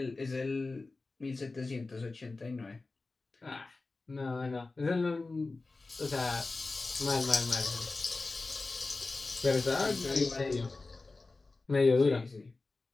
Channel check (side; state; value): right; quieter; 3.5 dB